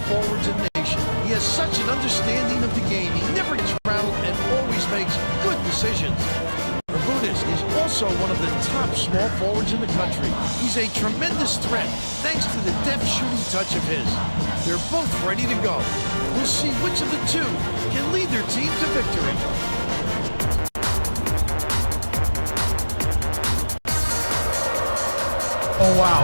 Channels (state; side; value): inverted; both; correlation -1.00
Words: forwards in the nation. He has such an understanding of the game. He never gets rattled and always makes good decisions. Bermudez is also one of the top small forwards in the country. He's a tremendous threat thanks to the deft shooting touch of his. They're both ready to go. We'll see which of the two can lead their team to victory. Oh,